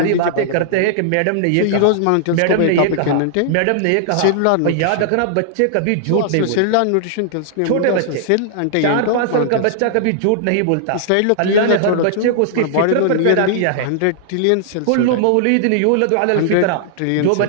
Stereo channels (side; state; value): both; different; correlation -0.01